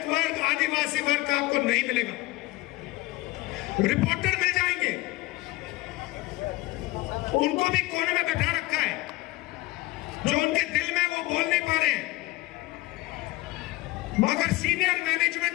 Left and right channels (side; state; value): right; quieter; 19.7 dB